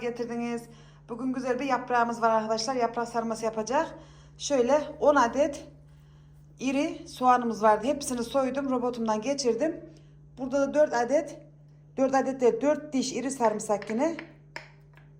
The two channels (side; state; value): both; identical; correlation 1.00